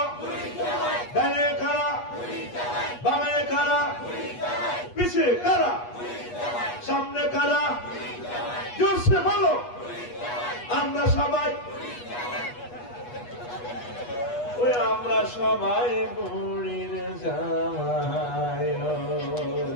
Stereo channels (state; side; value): late; right; 8.3 ms